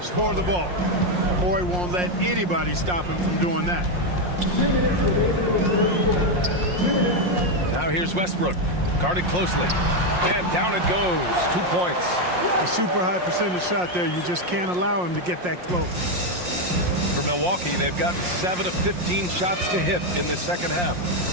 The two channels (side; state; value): left; late; 5.6 ms